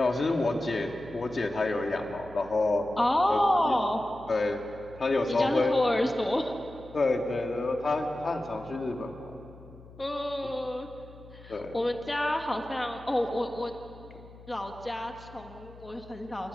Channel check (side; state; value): left; noise; hum, 20 dB below the sound